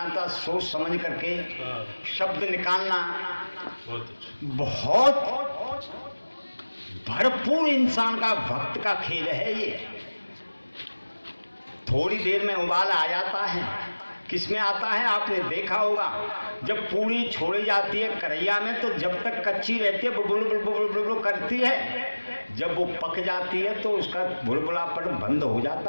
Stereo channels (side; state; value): both; inverted; correlation -1.00